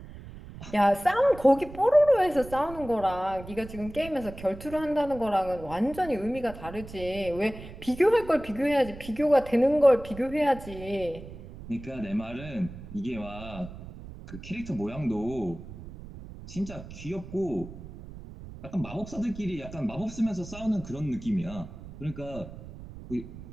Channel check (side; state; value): right; noise; rumble, 14 dB below the sound